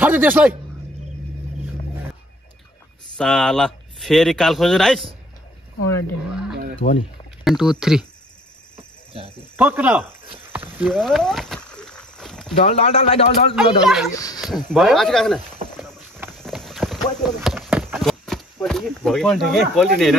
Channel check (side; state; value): both; normal; correlation 0.54